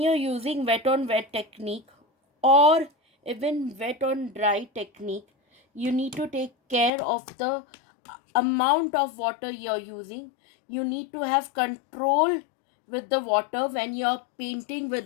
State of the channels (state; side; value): drops out; right; at 6.9 s